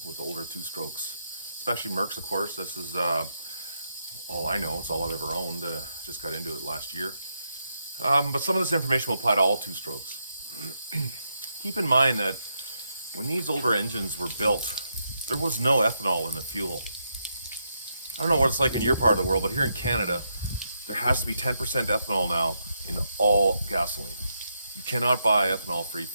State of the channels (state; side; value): inverted; both; correlation -0.81